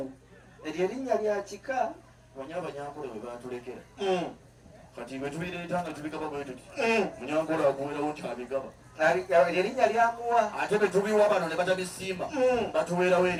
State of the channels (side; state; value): both; identical; correlation 1.00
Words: eryo erinnya lya kika banya abanyankole bwe batulekera kati bwe tubireeta nga tubigaba bwe tuti munyankole akuweerawo nti abigaba eryo erinnya lyamuwa ate bwe tubiwa bano ne batabisiima batuweerawo